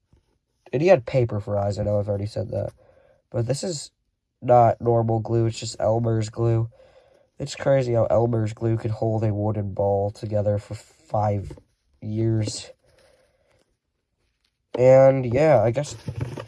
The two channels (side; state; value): both; identical; correlation 1.00